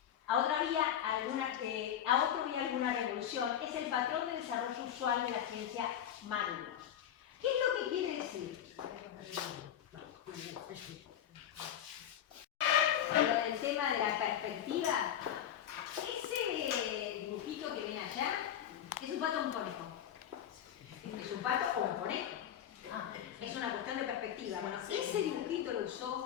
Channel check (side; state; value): right; quieter; 10.2 dB